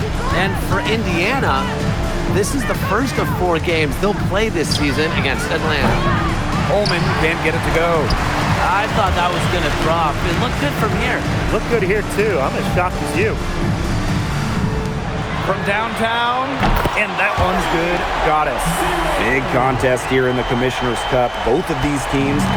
And for Indiana, this is the first of 4 games they'll play this season against Atlanta. Coleman can't get it to go. I thought that was going to drop. It looked good from here. Looked good here, too. I'm as shocked as you. From downtown, and that one's good. Goddess. Big contest here in the Commissioner's Cup. Both of these teams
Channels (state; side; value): identical; both; correlation 1.00